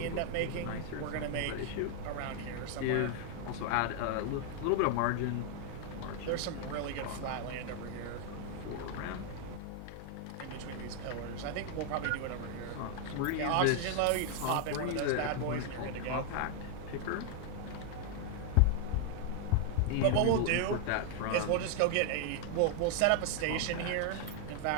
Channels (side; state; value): both; different; correlation 0.00